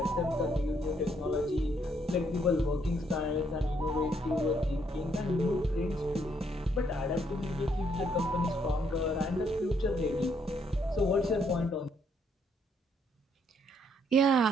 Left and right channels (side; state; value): both; normal; correlation 0.71